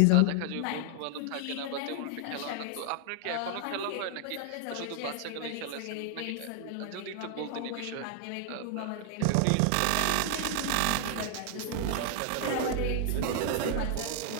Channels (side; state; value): both; different; correlation 0.00